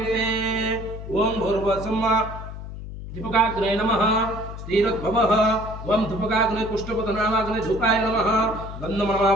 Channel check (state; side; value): noise; left; hum, 10 dB below the sound